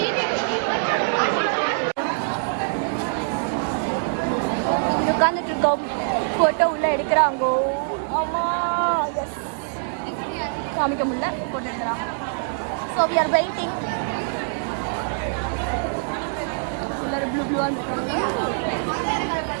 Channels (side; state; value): left; silent; digital silence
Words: உட்காந்துட்டு இருக்கோம், போட்டோ உள்ள எடுக்கிறாங்க. ஆமா காமிக்க முடியல, போட்டோ எடுக்கிறாங்க. So we are waiting.